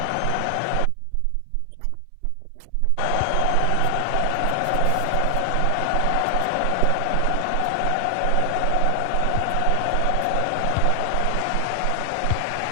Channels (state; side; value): different; both; correlation 0.00